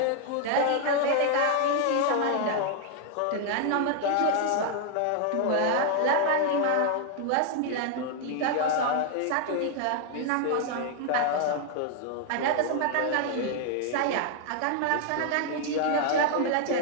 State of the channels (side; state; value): both; different; correlation 0.00